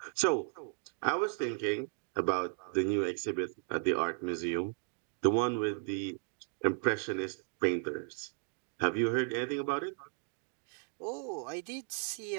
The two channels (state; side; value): silent; left; 54 dB below the other